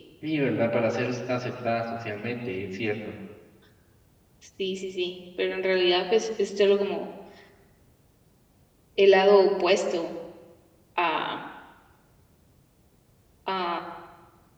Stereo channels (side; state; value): both; identical; correlation 1.00